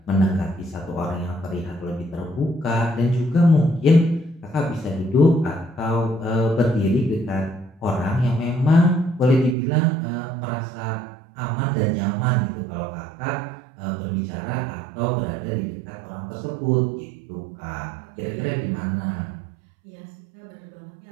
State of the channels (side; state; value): left; drops out; at 9.6 s